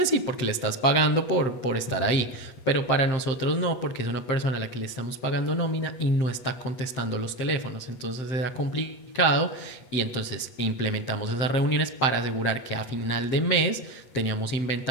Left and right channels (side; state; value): right; late; 7.7 ms